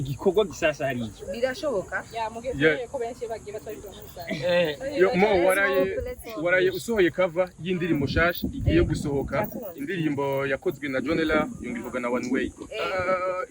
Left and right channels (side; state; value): both; identical; correlation 1.00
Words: gisasa hariya birashoboka ya mugeze ko benshi bagiye batwara muri yo mo waraye usohoye cover y'indirimbo shasha igiye gusohoka indirimbo yakozwe na Jonela yungivuga na One Way